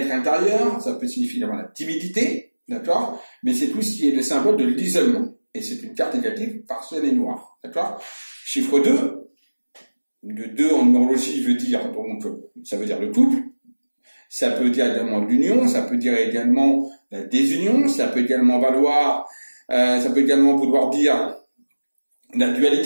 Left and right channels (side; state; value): both; inverted; correlation -1.00